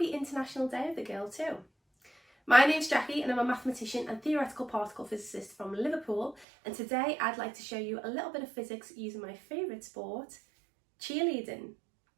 International Day of the Girl too. My name's Jackie and I'm a mathematician and theoretical particle physicist from Liverpool, and today I'd like to show you a little bit of physics using my favourite sport, cheerleading.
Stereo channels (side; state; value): left; drops out; at 6.5 s